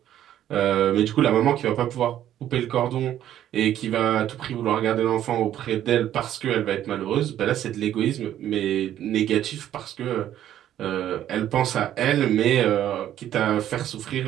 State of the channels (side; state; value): left; quieter; 11.7 dB